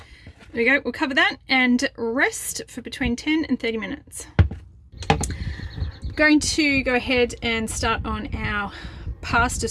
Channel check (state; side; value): identical; both; correlation 1.00